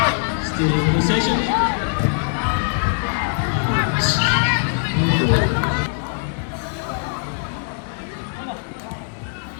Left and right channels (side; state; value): right; silent; digital silence